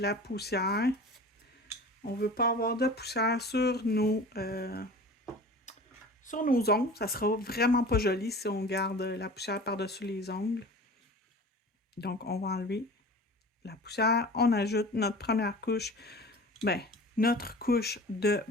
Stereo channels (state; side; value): normal; both; correlation 0.39